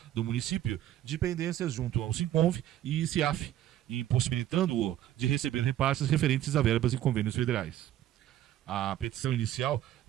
do município de pendências junto ao SINCONV e CIAF, impossibilitando-o de receber repasses referentes a verbas e convênios federais. A petição inicial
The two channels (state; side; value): quieter; left; 12.7 dB